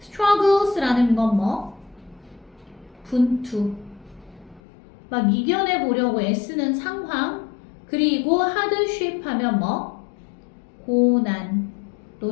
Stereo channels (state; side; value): drops out; right; at 4.6 s